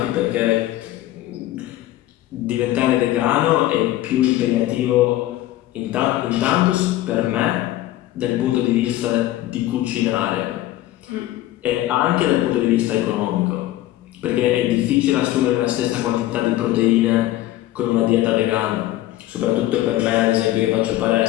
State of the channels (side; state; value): right; quieter; 14.9 dB